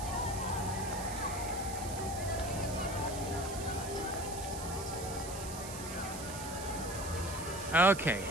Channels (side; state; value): right; noise; hiss, 10 dB below the sound